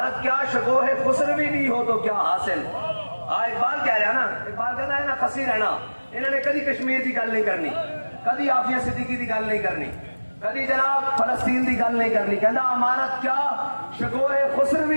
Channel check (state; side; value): inverted; both; correlation -1.00